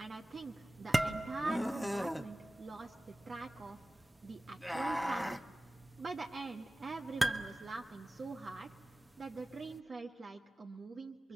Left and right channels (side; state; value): both; normal; correlation 0.96